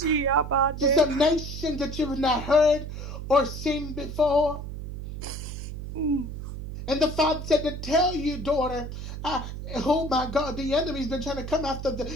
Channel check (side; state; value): right; noise; hum, 8 dB below the sound